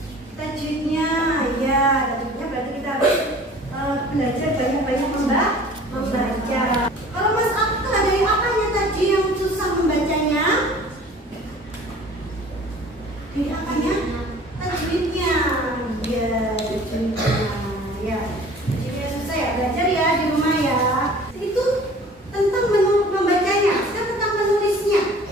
Tajwidnya, ya, tajwidnya berarti kita harus belajar banyak-banyak membaca. Kalau Mas Akka, dari apanya tadi yang susah membacanya? Dari apanya? Tajwidnya, ya, tajwidnya, ya. Jadi susah ya, belajar ya di rumah ya. Itu tentang membacanya, sekarang tentang menulisnya.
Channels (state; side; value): normal; both; correlation 0.47